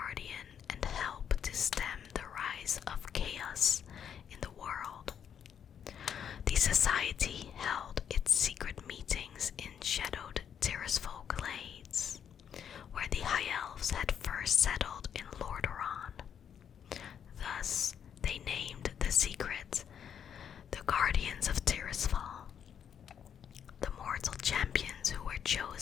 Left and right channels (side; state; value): right; quieter; 8.4 dB